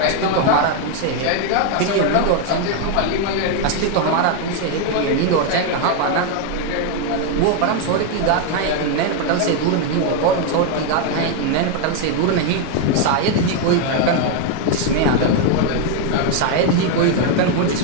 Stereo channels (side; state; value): both; different; correlation 0.01